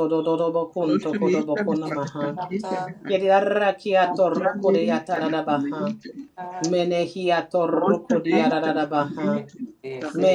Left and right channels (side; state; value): both; identical; correlation 1.00